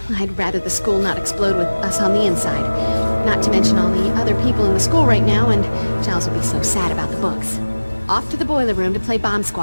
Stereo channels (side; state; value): both; inverted; correlation -1.00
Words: I'd rather the school not explode with us on the inside. Not to mention all the other people in the school right now, and Giles would be so sad about the books. Off to the boiler room to play Bomb